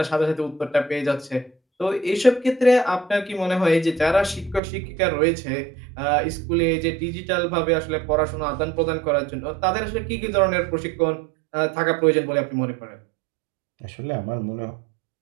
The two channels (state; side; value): drops out; left; at 4.6 s